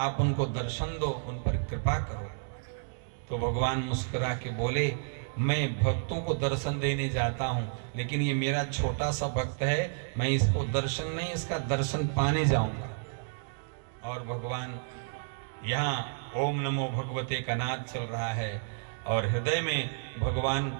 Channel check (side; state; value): left; silent; digital silence